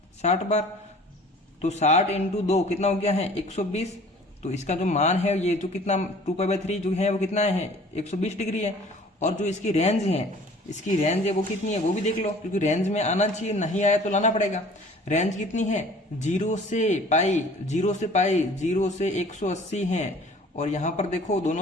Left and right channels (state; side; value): normal; both; correlation 0.49